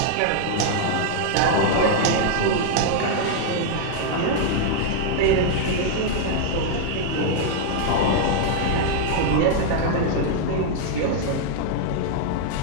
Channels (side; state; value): both; different; correlation -0.01